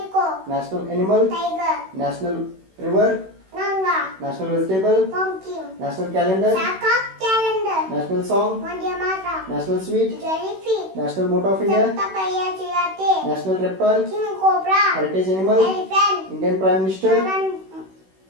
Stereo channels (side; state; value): left; late; 16 ms